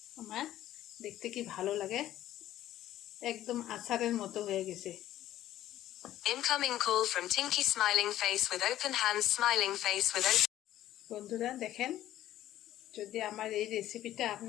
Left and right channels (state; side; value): quieter; right; 13.3 dB